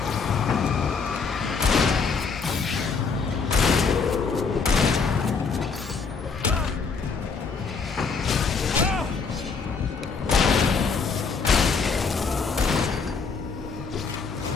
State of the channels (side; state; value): right; quieter; 5.1 dB